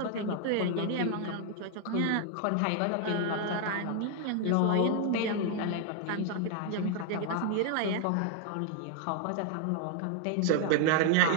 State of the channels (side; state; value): both; different; correlation 0.00